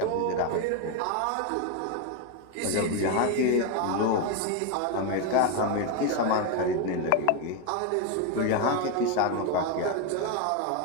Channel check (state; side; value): different; both; correlation 0.02